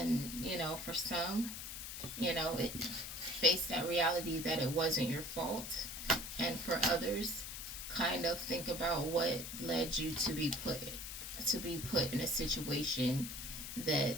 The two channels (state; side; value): noise; left; hiss, 7 dB below the sound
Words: for some, face that reality that it wasn't your fault, and for others, kind of think about what led you to be put in a situation